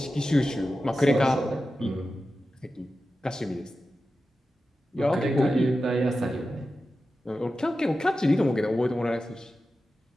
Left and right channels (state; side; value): normal; both; correlation 0.92